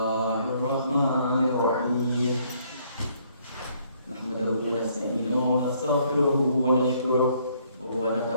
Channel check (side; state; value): both; inverted; correlation -0.67